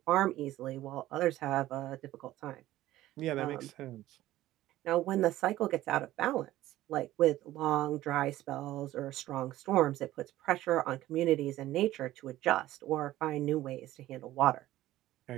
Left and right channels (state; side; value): quieter; left; 15.2 dB